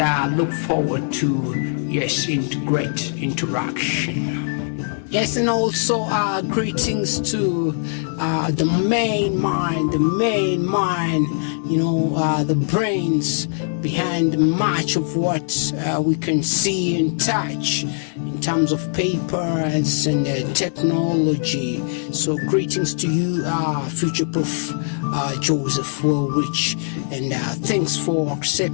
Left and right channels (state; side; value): silent; right; digital silence